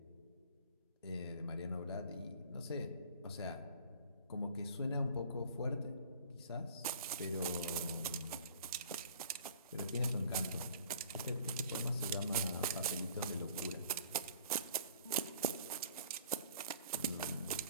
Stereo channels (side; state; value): both; inverted; correlation -0.49